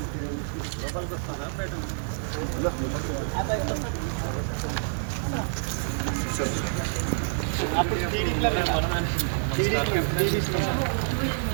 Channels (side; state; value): left; silent; 60 dB below the other